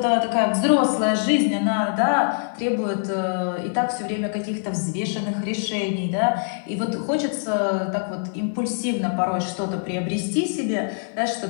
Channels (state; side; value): silent; right; 63 dB below the other